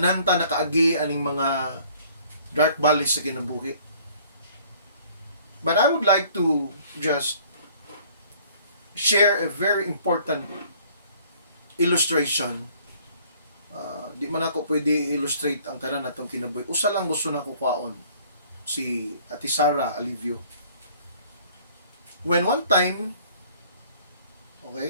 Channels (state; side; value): inverted; both; correlation -0.56